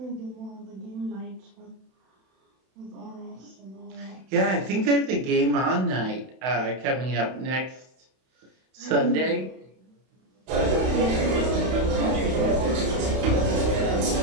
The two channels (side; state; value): left; late; 31 ms